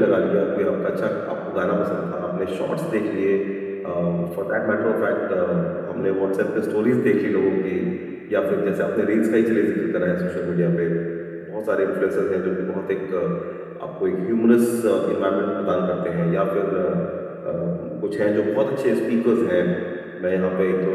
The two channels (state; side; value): identical; both; correlation 1.00